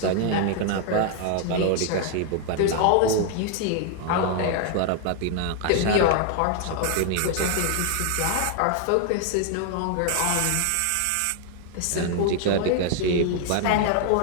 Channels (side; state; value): both; different; correlation 0.00